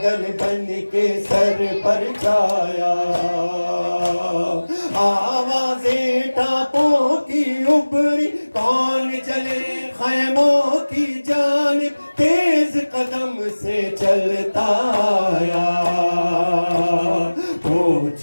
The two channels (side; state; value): both; inverted; correlation -1.00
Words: بن کے سر پر چھایا آوازیں ٹاپوں کی ابری کون چلے خیموں کی جانب تیز قدم سے چلتا آیا